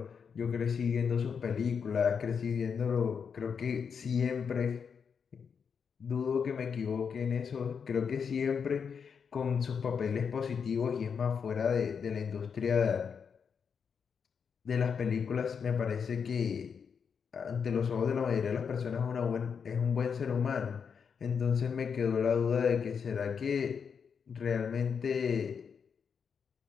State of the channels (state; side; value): quieter; right; 6.5 dB